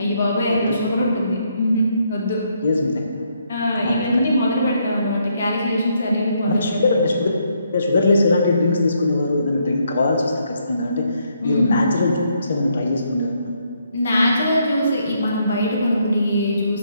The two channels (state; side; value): inverted; both; correlation -0.74